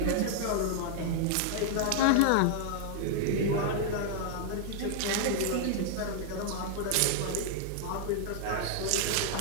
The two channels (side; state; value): both; different; correlation -0.01